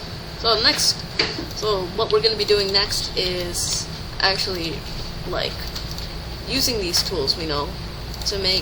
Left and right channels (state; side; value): identical; both; correlation 1.00